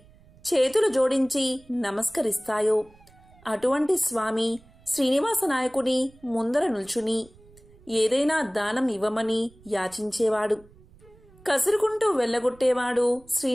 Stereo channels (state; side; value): noise; right; rumble, 26 dB below the sound